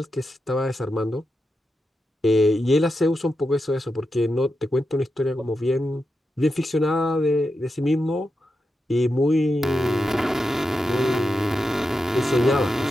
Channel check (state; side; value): normal; both; correlation 0.88